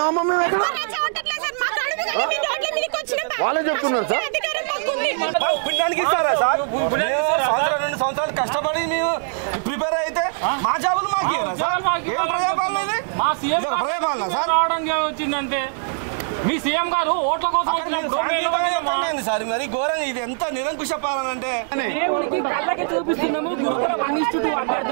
మేము? ఎక్కడ వాళ్ళే చెప్తున్నారు సార్. పుణ్యానికి ఇస్తారా సార్? 2 సంవత్సరాలు కష్టపడి మేము ప్రిపేర్ అయితే మా జాబులు మాకు ఇయ్యరా సార్? ఏం ప్రజాపాలన ఇది? ప్రజాపాలన సార్ వచ్చిందంటే మీ సీఎం గారు ఓట్ల కోసం సార్ మరి ఘోరంగా ఇది ఎంత నిరంకుశ పాలన అంటే కళ్ళకి చూపిస్తున్నాము. గురుకుల 1:2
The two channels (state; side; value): silent; left; digital silence